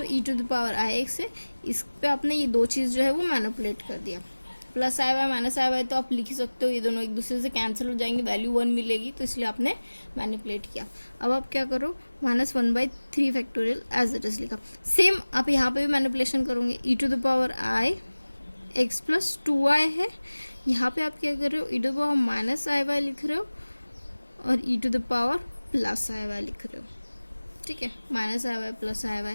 e to the power i x है, इस पे आपने ये दो चीज जो है वो मैनिपुलेट कर दिया। +i y -i y तो आप लिख ही सकते हो, ये दोनों एक दूसरे से कैंसिल हो जाएंगे, वैल्यू 1 मिलेगी, तो इसलिए आपने मैनिपुलेट किया। अब आप क्या करो, -1/3 फैक्टोरियल एज इट इज लिखा। सेम आप यहाँ पे भी मैनिपुलेशन करोगे, e to the power i x plus 2y है, यहाँ पे आप क्या कर रहे हो, e to the power -i y लिख रहे हो और e to the power plus i y लिख रहे हो, ठीक है, minus i y plus i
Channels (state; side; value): inverted; both; correlation -1.00